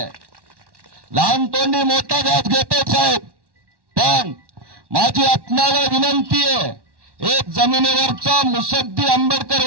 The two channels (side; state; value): left; late; 1.1 ms